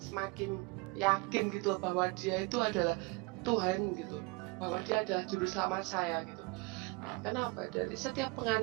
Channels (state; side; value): quieter; left; 27.1 dB